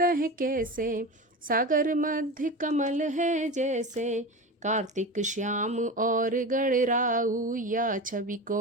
कैसे, सागर मध्य कमल है जैसे। कार्तिक श्याम और गणराऊ, या छवि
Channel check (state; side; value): normal; both; correlation 0.27